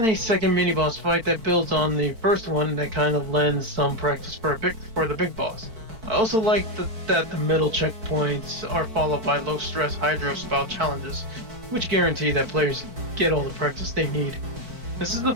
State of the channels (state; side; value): late; left; 4.5 ms